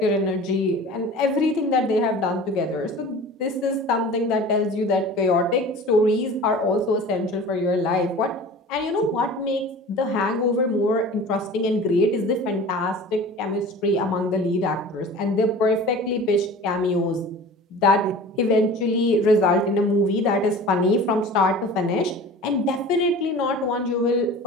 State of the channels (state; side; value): normal; both; correlation 0.40